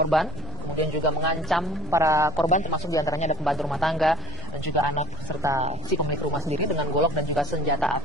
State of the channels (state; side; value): noise; right; rumble, 14 dB below the sound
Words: kemudian juga mengancam para korban, termasuk diantaranya ada pembantu rumah tangga dan juga anak serta si pemilik rumah sendiri dengan golok dan juga senjata